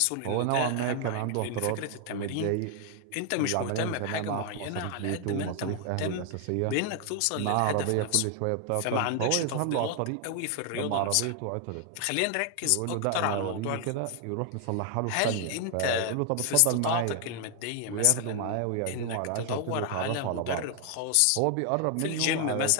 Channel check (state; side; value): different; both; correlation 0.00